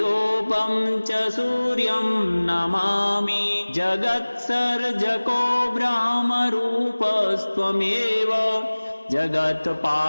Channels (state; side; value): inverted; both; correlation -1.00